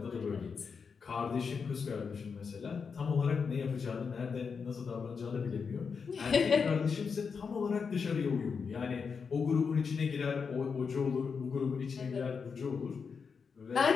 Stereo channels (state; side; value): quieter; right; 5.7 dB